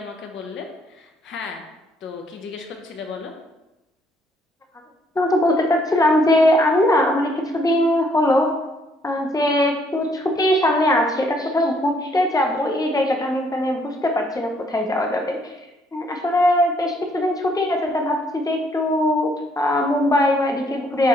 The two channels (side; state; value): both; normal; correlation 0.67